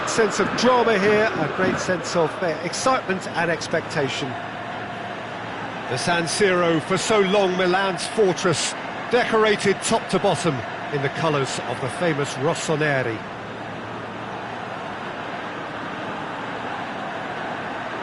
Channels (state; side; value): identical; both; correlation 1.00